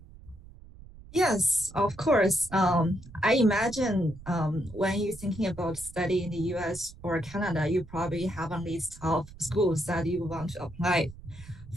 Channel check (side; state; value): right; noise; rumble, 18 dB below the sound